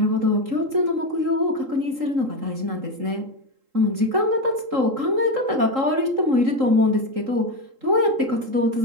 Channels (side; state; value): left; late; 3.8 ms